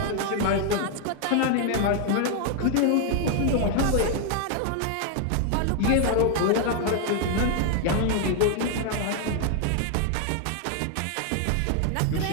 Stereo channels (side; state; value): both; different; correlation 0.00